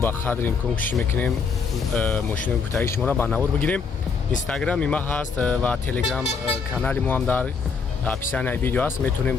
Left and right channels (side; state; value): right; quieter; 5.3 dB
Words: қадри имкон кӯшиш мекунем мошинои гуфтагии шуморо ба навор бигирем. Инстаграм има ҳаст ва телеграм канали мо ҳам дар описанияи видео аст. Метавонем